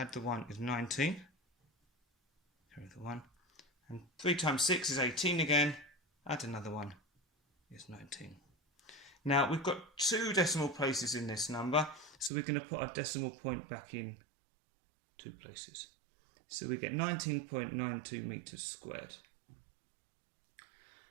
the 1 is 19. Carry the 1. And 3 times 6 is 18 again. Add another 1 is 19. Now we've got 2 decimal places in this number, so we're going to put our decimal point back in 2 places. So we get 19.92 meters squared.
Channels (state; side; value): drops out; left; at 12.3 s